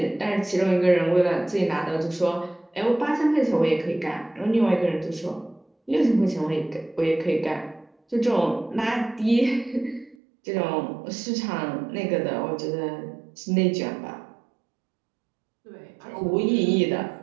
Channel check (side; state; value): left; drops out; at 10.2 s